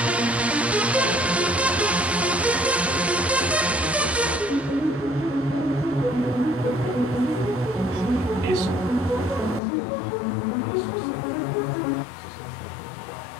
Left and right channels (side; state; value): right; drops out; at 9.6 s